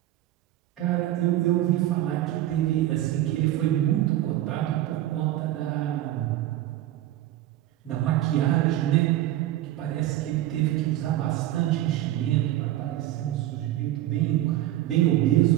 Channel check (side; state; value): left; quieter; 14.2 dB